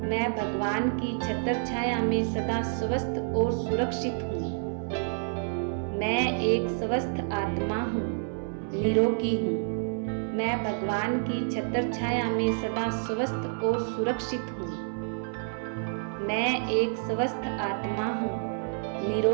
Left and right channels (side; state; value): left; silent; 59 dB below the other